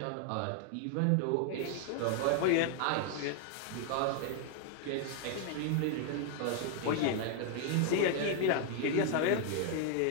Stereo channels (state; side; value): different; both; correlation 0.00